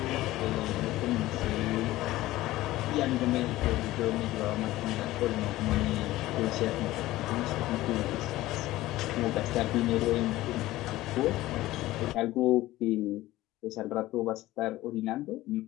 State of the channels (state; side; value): quieter; right; 16.8 dB